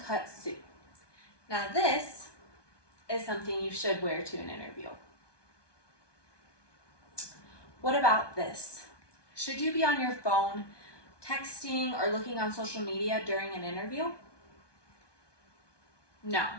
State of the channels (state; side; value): late; right; 1.2 ms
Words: suit. Now this is something you should wear to an interview. What about this? Should you be on your phone, texting, or looking on social media during an interview? No.